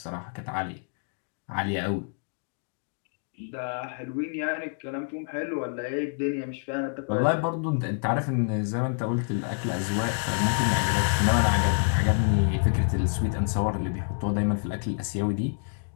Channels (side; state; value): right; silent; digital silence